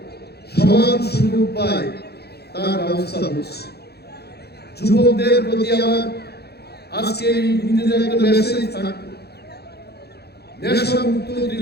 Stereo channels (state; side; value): late; right; 0.47 ms